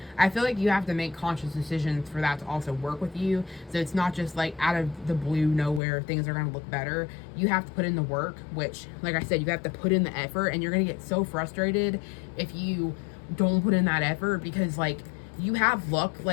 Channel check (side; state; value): right; drops out; at 5.8 s